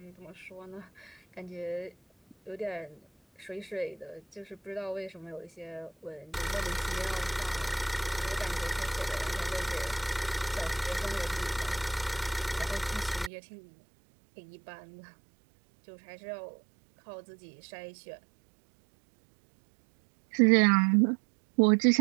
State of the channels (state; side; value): drops out; left; at 13.3 s